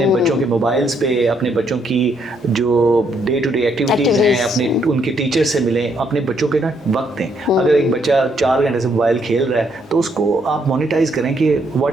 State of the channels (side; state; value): both; normal; correlation 0.72